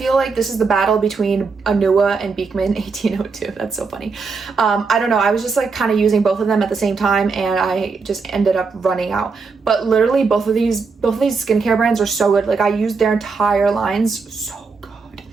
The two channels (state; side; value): quieter; left; 4.7 dB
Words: like this is the battle between Anua and Beekman 1802. That's so funny. I don't know. I was just like kind of using both of them at the same time, and I just ended up running out. But literally both of these skincare brands are so good. Like I used their entire lines. So good.